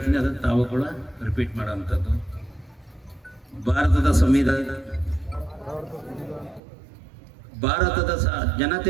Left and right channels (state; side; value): drops out; left; at 6.6 s